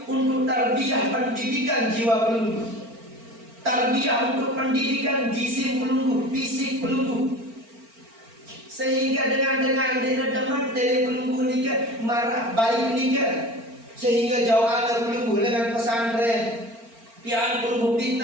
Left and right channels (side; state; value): left; late; 4.4 ms